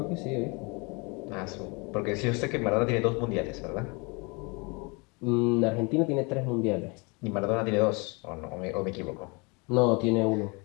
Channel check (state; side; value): quieter; right; 29.6 dB